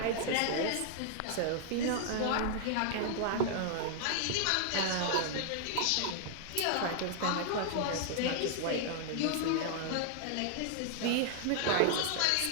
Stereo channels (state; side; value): different; both; correlation 0.00